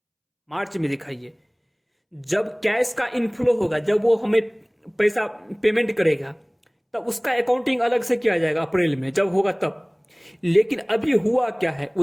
मार्च में दिखाइए। जब कैश का इनफ्लो होगा, जब वो हमें पैसा पेमेंट करेगा, तब उसका अकाउंटिंग अलग से किया जाएगा अप्रैल में, जब होगा तब। लेकिन अभी हुआ क्या है,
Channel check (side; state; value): both; identical; correlation 1.00